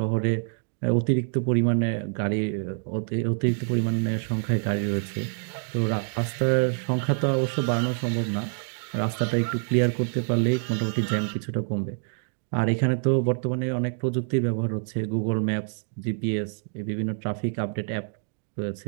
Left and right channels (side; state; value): left; silent; digital silence